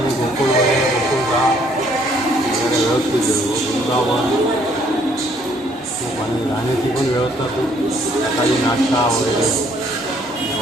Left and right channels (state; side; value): normal; both; correlation 0.65